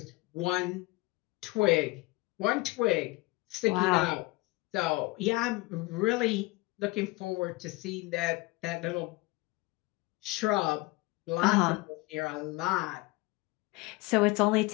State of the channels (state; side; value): quieter; right; 22.7 dB